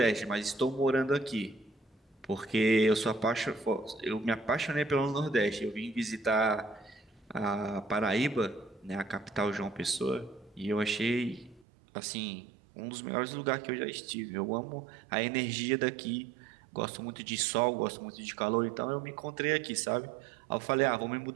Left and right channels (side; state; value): left; drops out; at 11.7 s